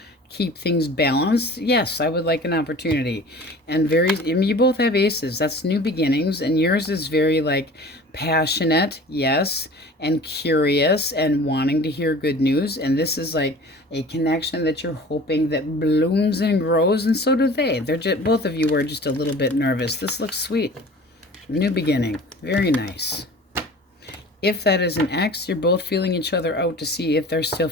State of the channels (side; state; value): both; normal; correlation 0.42